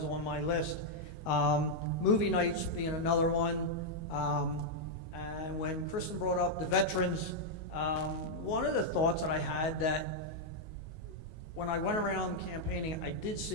on my list. Movie nights being another one. And when Kristen brought up the veterans, one of the thoughts that I had that when I went around campaigning, I did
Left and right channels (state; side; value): late; right; 19 ms